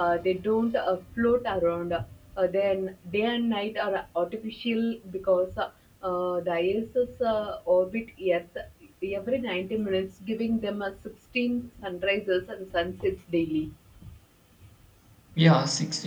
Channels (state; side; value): identical; both; correlation 1.00